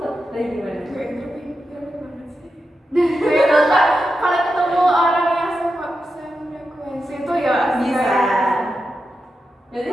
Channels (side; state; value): both; normal; correlation 0.89